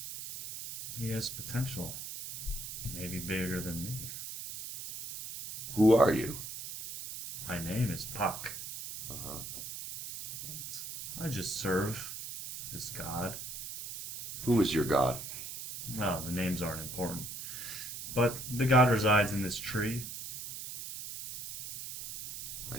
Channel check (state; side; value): noise; right; hiss, 8 dB below the sound